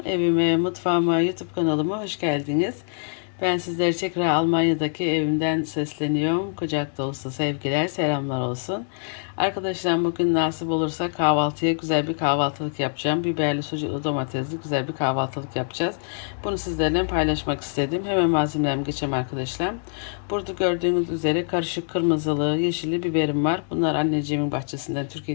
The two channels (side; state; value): right; silent; digital silence